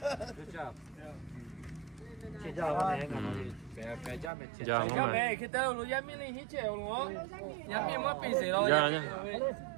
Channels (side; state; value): left; drops out; at 4.3 s